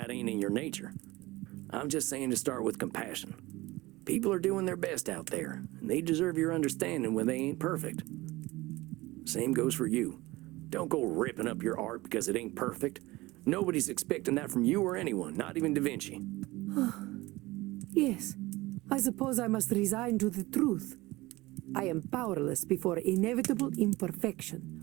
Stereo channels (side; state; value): left; quieter; 20.1 dB